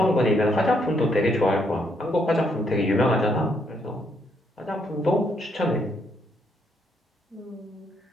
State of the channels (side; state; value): both; normal; correlation 0.73